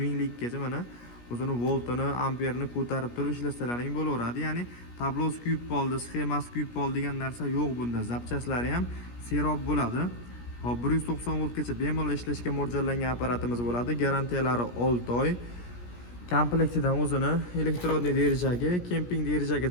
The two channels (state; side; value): late; right; 17 ms